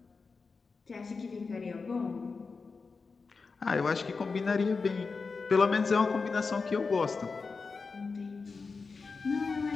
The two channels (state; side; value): quieter; right; 4.5 dB